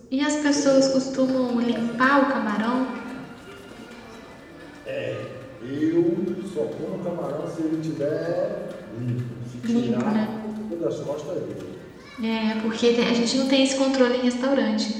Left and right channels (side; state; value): both; identical; correlation 1.00